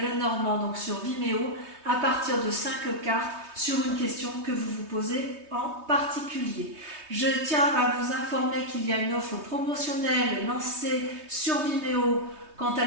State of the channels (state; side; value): late; left; 3.2 ms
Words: Lenormand, donc sur Vimeo, à partir de 5 cartes sur une question que vous vous posez en particulier. Je tiens à vous informer qu'il y a une offre promotionnelle lancée sur Vimeo quant à